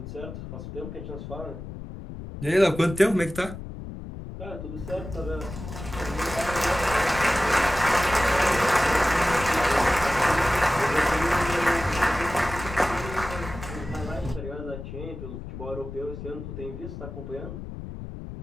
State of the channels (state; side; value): noise; left; rumble, 10 dB below the sound